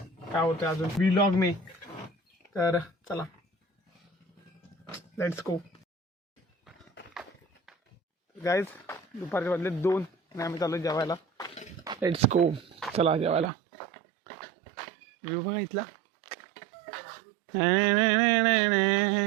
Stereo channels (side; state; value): left; drops out; at 13.5 s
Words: होतं अजून व्लॉग मी तर चला लेट्स गो गाईज दुपारचे वाजले 2 आणि आम्ही चाललो जेवायला. लेट्स गो चला जेवायला. व्ह्यू बघा इथला